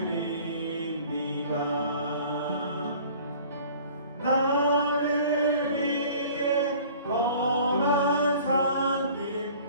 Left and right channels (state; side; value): inverted; both; correlation -0.48